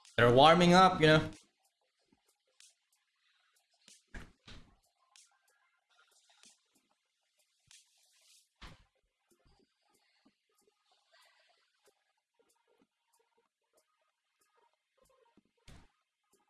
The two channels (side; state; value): both; identical; correlation 1.00